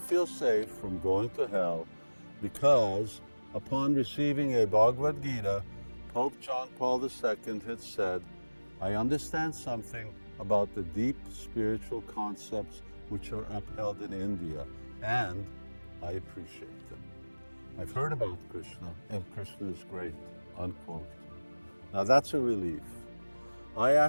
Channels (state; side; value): inverted; both; correlation -1.00